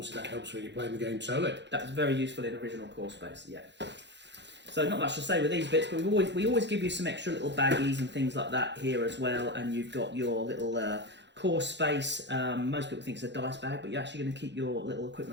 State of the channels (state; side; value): late; left; 0.52 ms